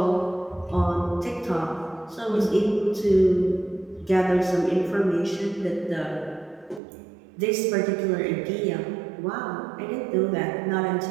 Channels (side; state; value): left; drops out; at 6.8 s